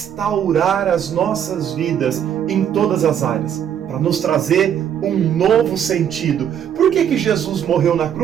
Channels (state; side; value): quieter; left; 9.2 dB